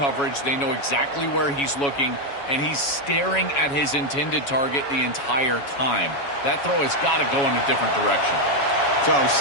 They know exactly where he's looking, and he's staring at his intended target the entire time. That throw has got to go in a different direction. So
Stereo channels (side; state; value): right; late; 7.2 ms